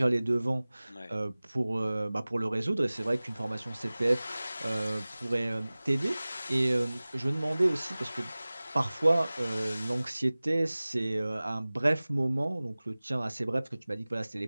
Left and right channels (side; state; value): both; inverted; correlation -0.99